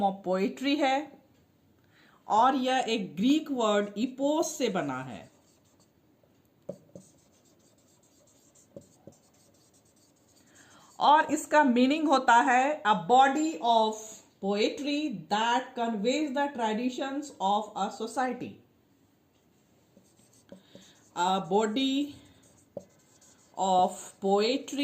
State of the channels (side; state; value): both; identical; correlation 1.00